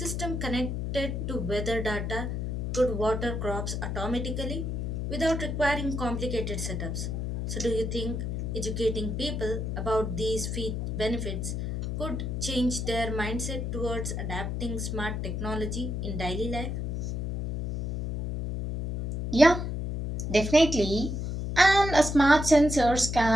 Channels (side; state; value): left; noise; hum, 3 dB below the sound